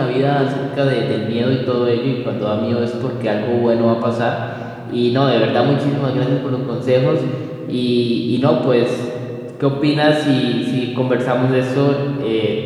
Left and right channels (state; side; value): identical; both; correlation 1.00